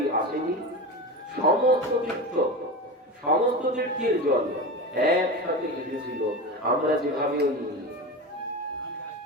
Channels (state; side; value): normal; both; correlation 0.25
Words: আসেনি, সমস্ত তীর্থ, সমস্ত তীর্থের জল একসাথে এসেছিল। আমরা যেভাবে